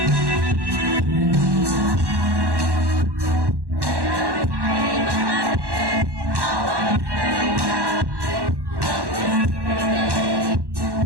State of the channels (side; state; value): left; late; 1.1 ms